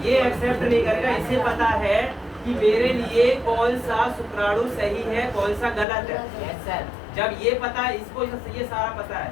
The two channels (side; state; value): right; drops out; at 5.9 s